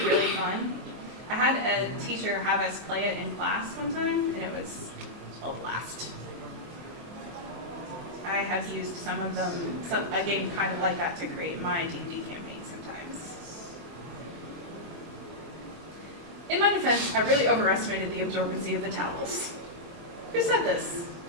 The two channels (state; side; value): late; left; 24 ms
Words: really fun. I had a teacher have us play it in class one time, and it was a blast. I have used some of them, a game kind of like that, to create my D&D campaign sometimes. In my defense, I really overestimated the absorbency of the towels. Who said this?